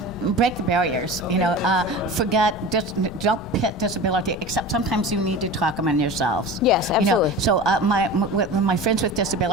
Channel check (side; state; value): left; noise; rumble, 15 dB below the sound